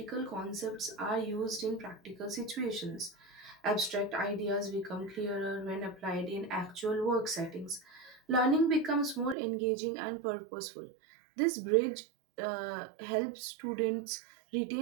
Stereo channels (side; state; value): left; drops out; at 9.3 s